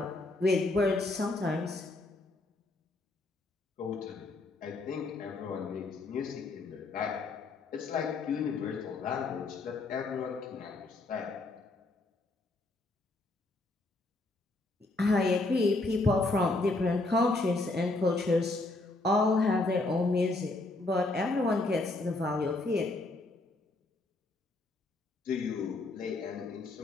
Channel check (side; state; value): right; quieter; 3.0 dB